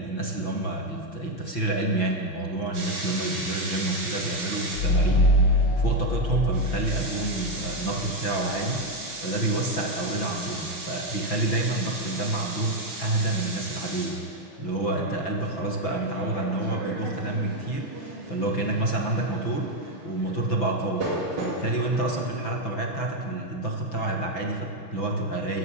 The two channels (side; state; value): right; late; 6.0 ms